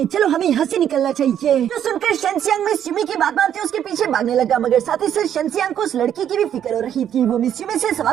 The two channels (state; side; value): quieter; left; 9.8 dB